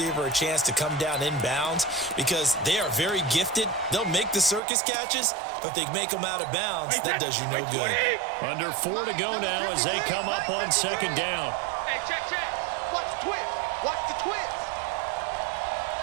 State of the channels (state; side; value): drops out; left; at 4.6 s